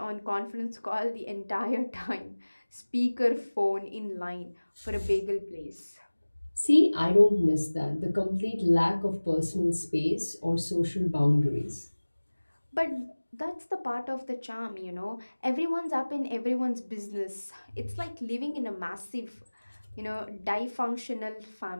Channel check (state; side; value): inverted; both; correlation -1.00